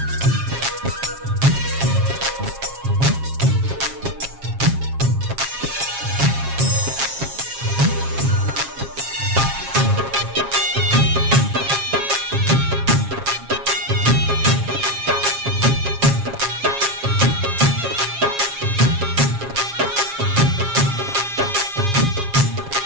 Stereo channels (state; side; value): late; left; 7.4 ms